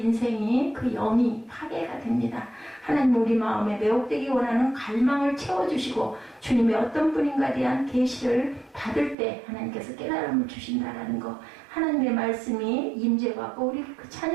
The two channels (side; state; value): left; drops out; at 9.2 s